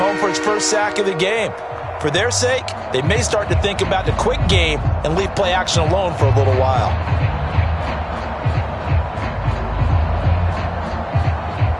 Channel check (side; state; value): both; identical; correlation 1.00